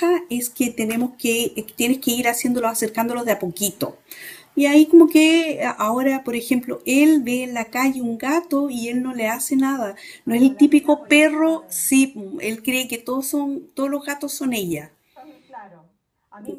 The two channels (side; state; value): both; identical; correlation 1.00